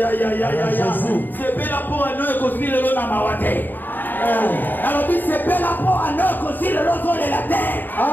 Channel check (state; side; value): late; right; 0.090 ms